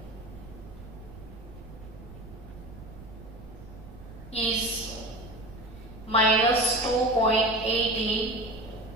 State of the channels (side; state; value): right; noise; rumble, 16 dB below the sound